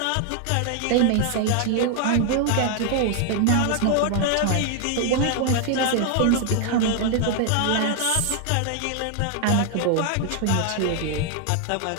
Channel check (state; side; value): different; both; correlation 0.00